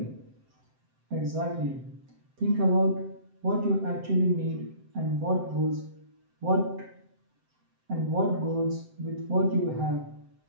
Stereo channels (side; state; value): left; late; 7.7 ms